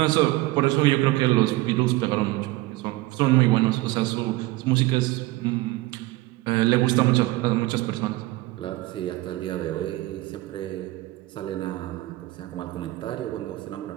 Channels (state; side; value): quieter; left; 19.0 dB